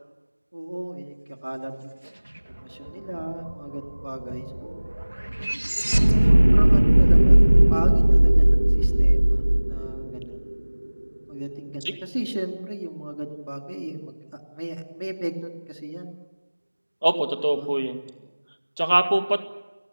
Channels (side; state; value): both; inverted; correlation -1.00